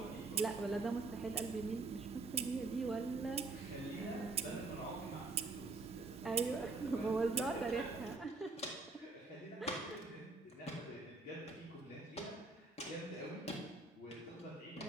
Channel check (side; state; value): left; quieter; 3.5 dB